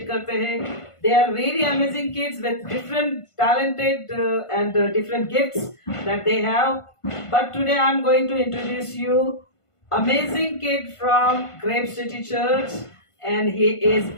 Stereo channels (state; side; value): late; right; 1.5 ms